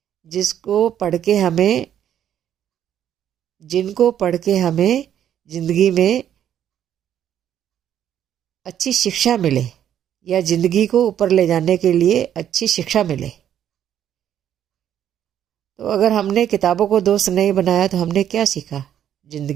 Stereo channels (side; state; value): left; quieter; 10.1 dB